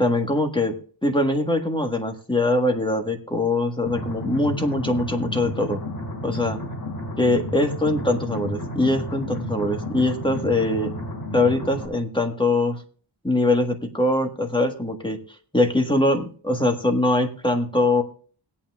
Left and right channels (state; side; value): normal; both; correlation 0.57